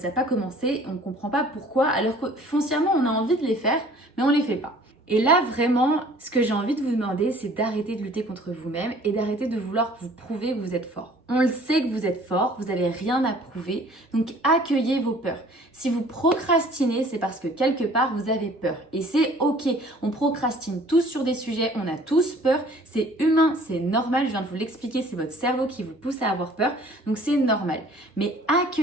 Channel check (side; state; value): both; normal; correlation 0.52